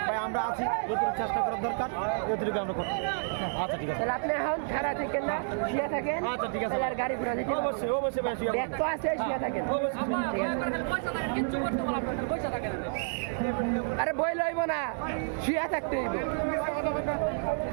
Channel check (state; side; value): silent; left; digital silence